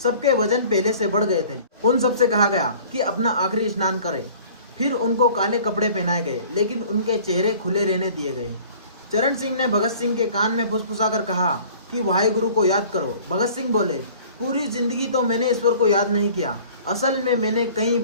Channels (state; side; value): inverted; both; correlation -0.49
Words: सबके वजन पहले से बढ़ गए थे। उन सबसे कहा गया कि अपना आखिरी स्नान करें। फिर उनको काले कपड़े पहनाए गए, लेकिन उनके चेहरे खुले रहने दिए गए। चरण सिंह ने भगत सिंह के कान में फुसफुसाकर कहा कि वाहेगुरु को याद करो। भगत सिंह बोले, पूरी जिंदगी तो मैंने ईश्वर को याद नहीं किया। असल में मैंने कई